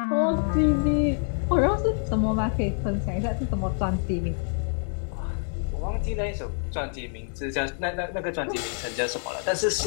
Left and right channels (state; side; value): silent; right; 61 dB below the other